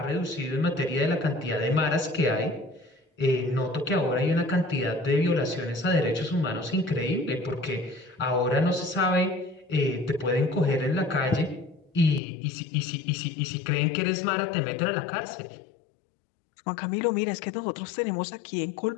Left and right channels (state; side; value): drops out; right; at 12.2 s